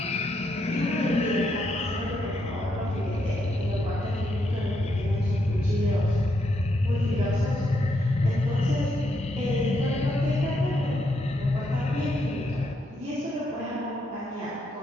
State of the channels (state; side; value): normal; both; correlation 0.78